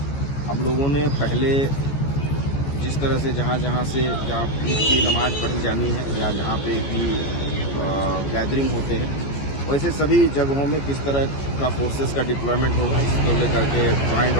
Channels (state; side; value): late; right; 14 ms